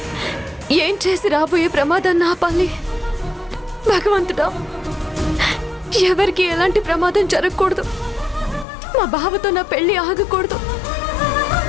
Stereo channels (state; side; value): drops out; right; at 8.7 s